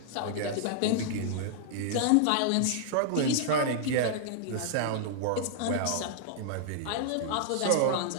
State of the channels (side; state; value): both; different; correlation -0.01